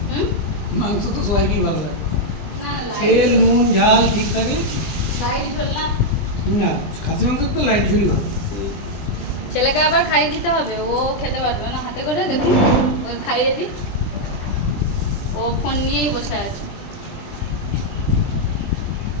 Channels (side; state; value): right; late; 20 ms